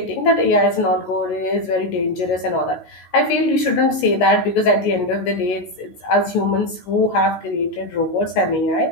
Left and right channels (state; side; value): late; right; 17 ms